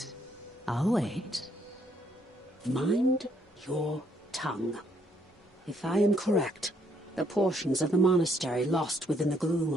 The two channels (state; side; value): normal; both; correlation 0.71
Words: I'll wait. Mind your tongue. If I am correct, the portions of the monastery lost within the gloom